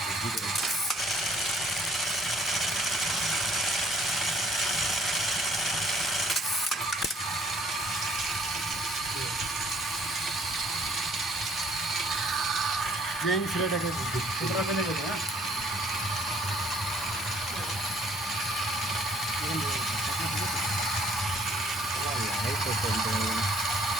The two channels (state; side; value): normal; both; correlation 0.61